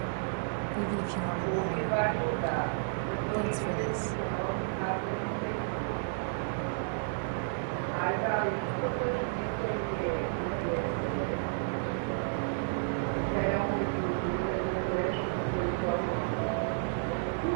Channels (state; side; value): silent; left; 57 dB below the other